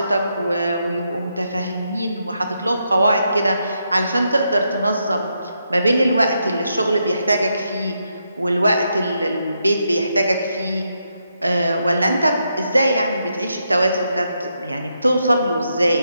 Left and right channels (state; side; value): inverted; both; correlation -0.81